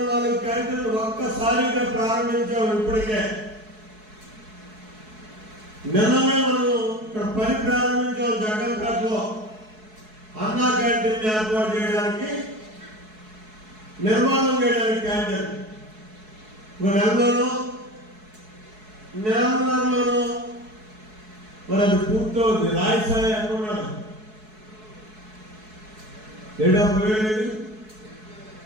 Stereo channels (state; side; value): late; left; 4.7 ms